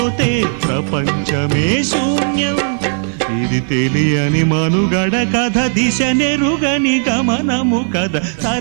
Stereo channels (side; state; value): left; silent; 68 dB below the other